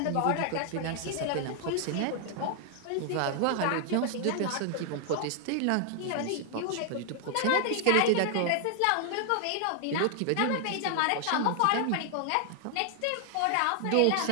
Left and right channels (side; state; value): both; different; correlation 0.00